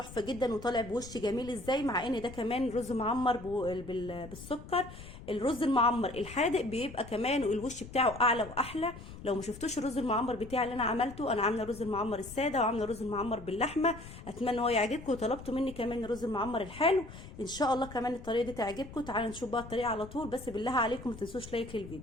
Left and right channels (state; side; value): noise; left; rumble, 14 dB below the sound